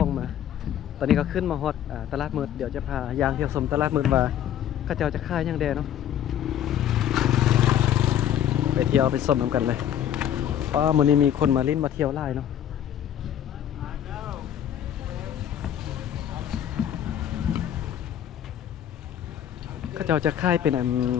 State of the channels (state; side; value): quieter; right; 10.3 dB